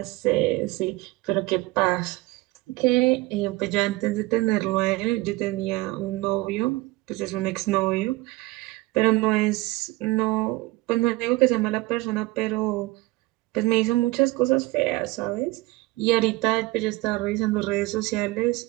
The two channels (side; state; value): left; quieter; 20.4 dB